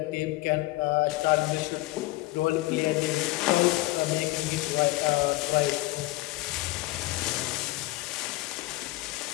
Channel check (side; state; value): right; quieter; 19.4 dB